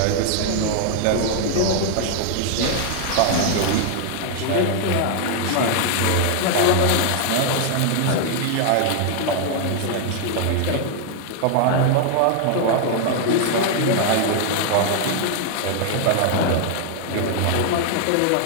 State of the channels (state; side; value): different; both; correlation 0.00